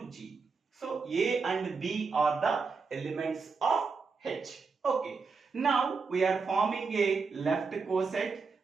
G. So A and B are the elements of H. Okay. Now we are forming a left coset.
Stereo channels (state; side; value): quieter; left; 4.8 dB